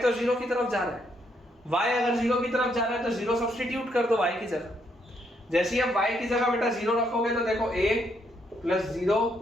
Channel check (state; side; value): normal; both; correlation 0.74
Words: तो 0 की तरफ जा रहा है। y अगर 0 की तरफ जा रहा है तो 0 सब्स्टिट्यूट कर दो y की जगह। जैसे ही आप y की जगह बेटा 0 रखोगे तो देखो a plus